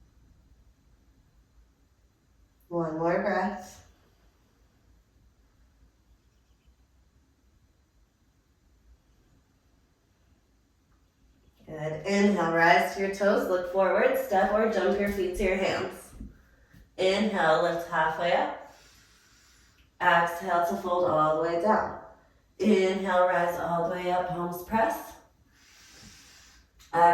One more breath. Good. Inhale, rise to your toes, look forward, step or jump your feet to your hands. Inhale, lift halfway up. Exhale to fold all the way down. Inhale, rise all the way up, palms press.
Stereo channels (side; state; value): both; identical; correlation 1.00